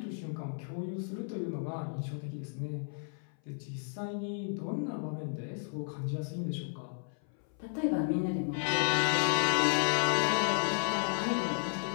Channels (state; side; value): silent; right; 56 dB below the other